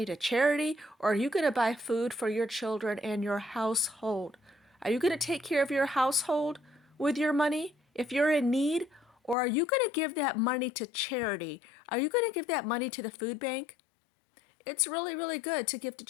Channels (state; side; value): drops out; right; at 9.3 s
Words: to charity, or are you going to buy food for your children and your household? Are you going to take care of your household with your money if you're in need, or are you going to give that money to charity? Are you going to give that money to the food bank? It's really, really good to give to